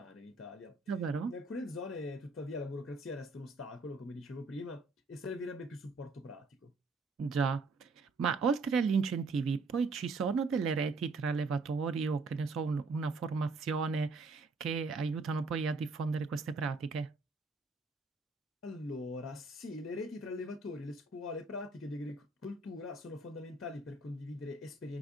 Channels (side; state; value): left; quieter; 3.6 dB